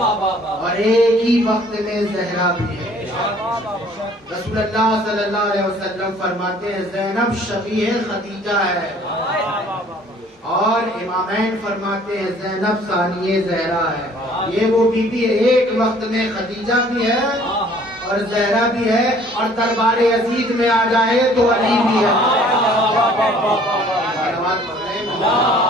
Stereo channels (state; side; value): normal; both; correlation 0.56